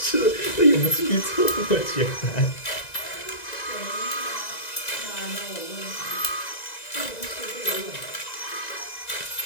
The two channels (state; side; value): late; right; 1.9 ms